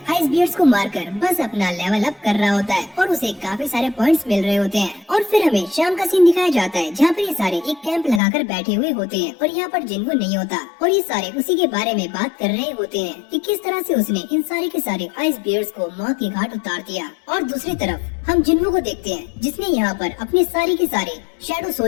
आइस बियर्स को मारकर बस अपना लेवल अप कर रहा होता है और उसे काफी सारे पॉइंट्स मिल रहे होते हैं। और फिर हमें शाम का सीन दिखाया जाता है जहाँ पर ये सारे एक कैंप लगाकर बैठे हुए होते हैं और यहाँ पर जिन्वो नहीं होता और ये सारे उसी के बारे में बात कर रहे होते हैं कि किस तरह से उसने इन सारे के सारे आइस बियर्स को मौत की घाट उतार दिया। और दूसरी तरफ हम जिन्वो को देखते हैं जिसने यहाँ पर अपने सारे के सारे शैडो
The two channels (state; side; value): drops out; right; at 8.2 s